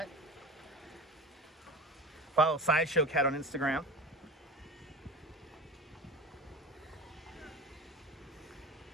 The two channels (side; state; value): both; normal; correlation 0.31